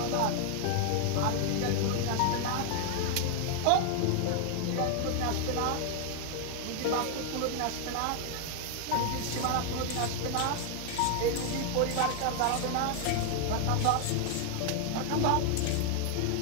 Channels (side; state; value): both; different; correlation 0.00